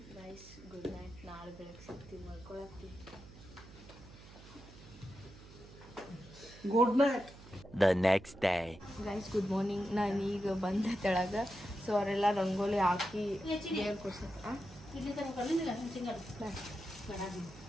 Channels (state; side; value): noise; right; hum, 18 dB below the sound